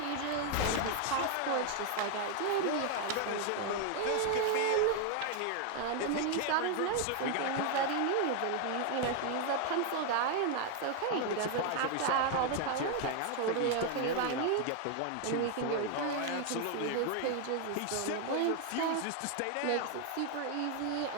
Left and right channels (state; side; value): different; both; correlation 0.00